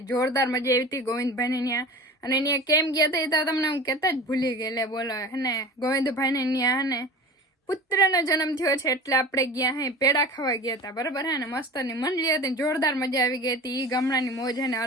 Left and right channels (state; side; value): normal; both; correlation 0.36